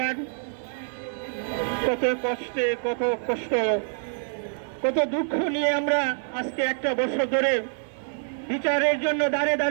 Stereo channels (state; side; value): silent; left; digital silence